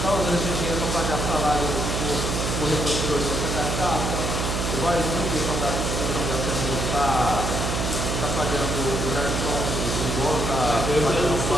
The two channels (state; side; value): noise; right; hum, 1 dB below the sound